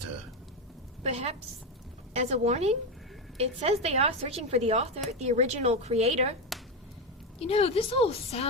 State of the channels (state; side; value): normal; both; correlation 0.12